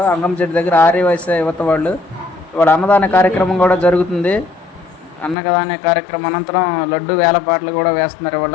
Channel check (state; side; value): drops out; right; at 5.4 s